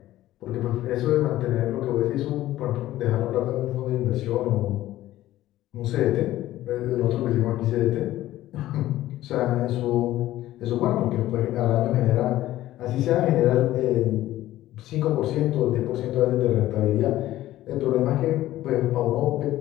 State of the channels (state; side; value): quieter; right; 14.8 dB